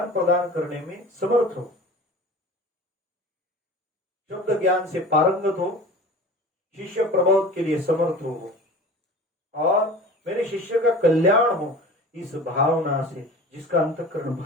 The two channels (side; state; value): both; normal; correlation 0.38